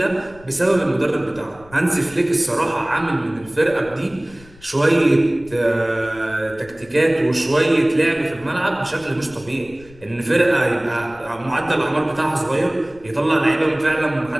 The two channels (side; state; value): left; noise; rumble, 24 dB below the sound